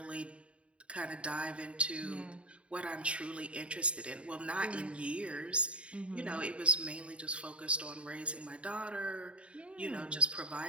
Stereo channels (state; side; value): late; left; 0.061 ms